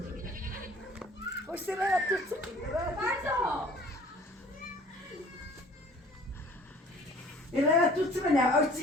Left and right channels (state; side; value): normal; both; correlation 0.52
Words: O sıraya tutsun. Pardon. Sıraya tutsun bana,